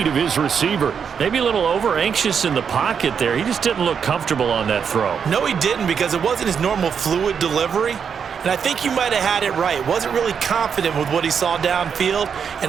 of his receiver. Maybe a little over-anxious in the pocket there. He just didn't look comfortable on that throw. No, he didn't, because it wasn't his normal fluid delivery. And I think you might have had it right. Wasn't really confident with what he saw downfield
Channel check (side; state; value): left; quieter; 6.9 dB